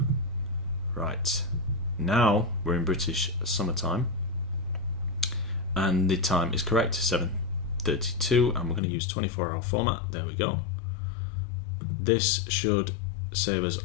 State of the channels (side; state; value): right; drops out; at 8.8 s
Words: Right, now we're in British summertime, and the time is correct, 7:32, and we're going to use 24-hour format. There we go. This should save us